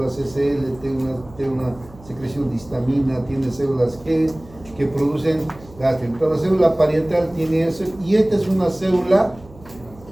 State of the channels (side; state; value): right; noise; hum, 22 dB below the sound